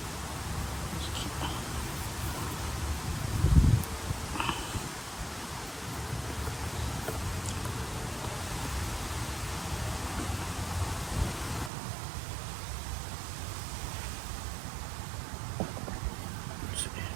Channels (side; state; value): left; drops out; at 11.7 s